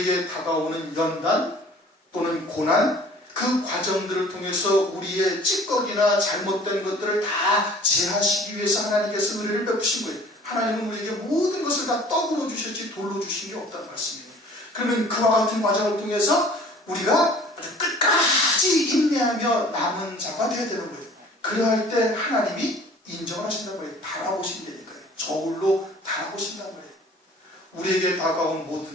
다가오는 연단 또는 고난, 그 과정들을 통해서 우리의 찌꺼기나 잘못된 것들을 다 제하시기 위해서 하나님께서 은혜를 베푸신 거예요. 하나님은 우리에게 모든 것을 다 떡으로 주셨지 돌로 주신 게 없다는 말씀이에요. 그러면 그와 같은 과정을 통해서 우리가 끝까지 인내하며 남은 자가 되어야 되는 거예요. 그러할 때 하나님이 인정하신단 말이에요. 바라보신다니까요. 저울로 바라보신단 말이에요. 우리에게 다가온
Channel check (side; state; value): both; normal; correlation 0.49